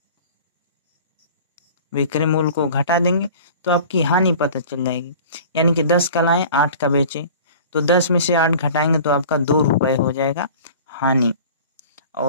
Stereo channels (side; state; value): both; inverted; correlation -0.42